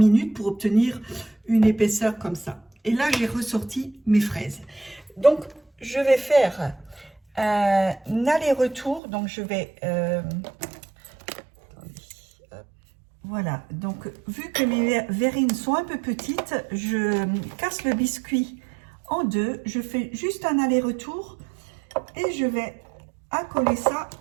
pour obtenir une épaisseur comme ça. Et là, j'ai ressorti mes fraises. Donc, je vais faire un aller-retour. Donc, je vais... voilà. Donc, vu que mes verrines sont un peu petites, je casse le biscuit en deux. Je fais juste un aller-retour et je vais accoler ça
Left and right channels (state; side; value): drops out; left; at 9.0 s